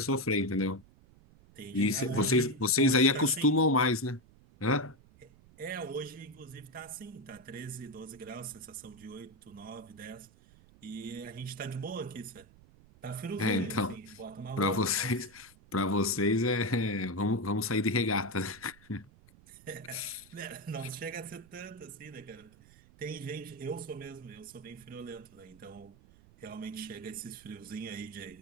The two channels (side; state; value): right; noise; rumble, 25 dB below the sound